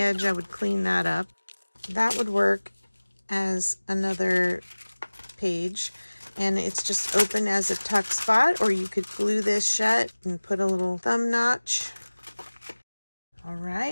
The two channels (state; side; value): inverted; both; correlation -1.00